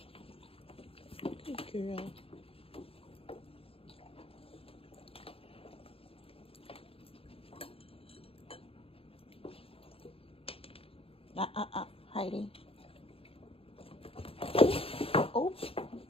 Good girl. Heidi. Oh,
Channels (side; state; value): right; late; 0.27 ms